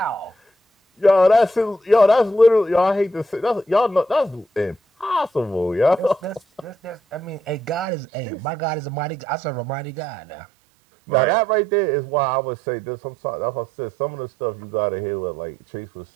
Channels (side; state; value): left; drops out; at 7.9 s